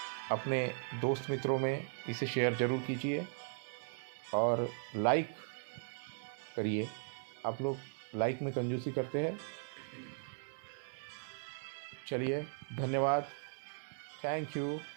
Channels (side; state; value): left; silent; 52 dB below the other